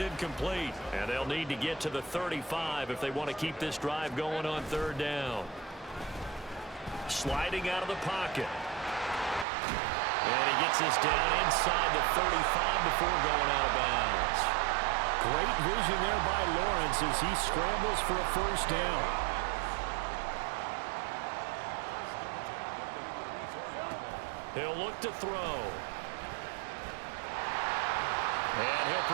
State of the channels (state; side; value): drops out; left; at 9.5 s